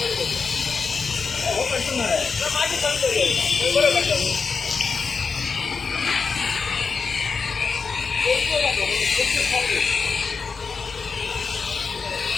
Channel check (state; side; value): quieter; right; 5.1 dB